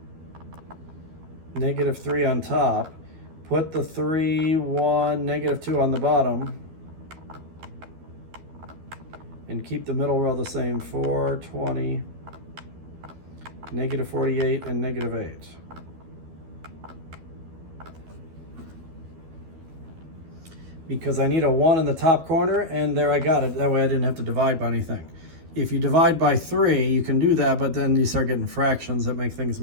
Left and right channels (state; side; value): late; left; 12 ms